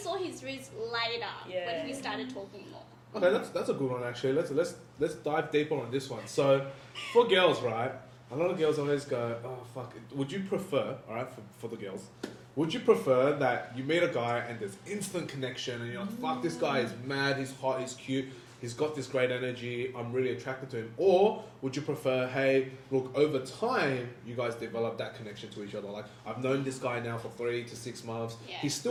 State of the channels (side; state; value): both; identical; correlation 1.00